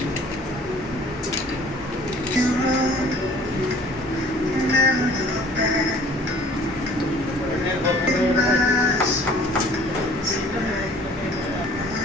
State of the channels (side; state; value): both; normal; correlation 0.52